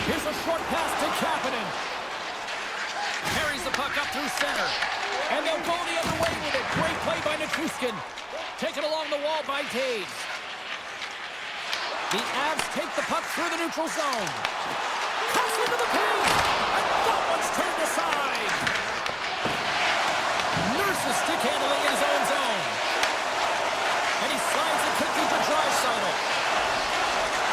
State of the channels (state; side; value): identical; both; correlation 1.00